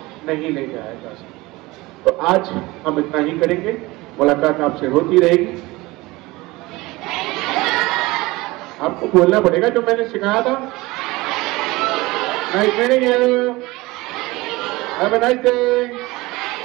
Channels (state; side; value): quieter; left; 21.1 dB